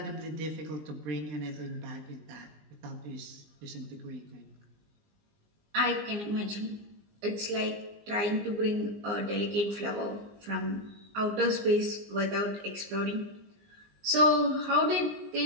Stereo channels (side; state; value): left; late; 19 ms